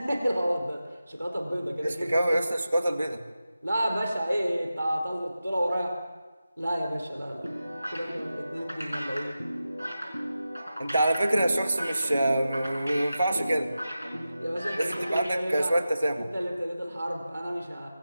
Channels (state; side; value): inverted; both; correlation -0.92